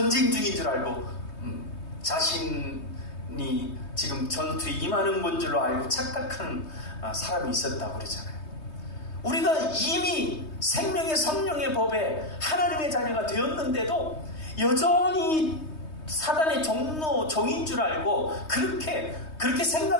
중인 줄 알고 자신이 지금 전투에 임하는 건 줄로 알고 착각하는 사람이 있었다고 그러잖아요. 우리가 이미 생명의 성령의 법에 하나님의 자녀가 되었는데도 여전히 사단의 종인 줄 알고 그렇게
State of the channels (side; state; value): right; late; 3.2 ms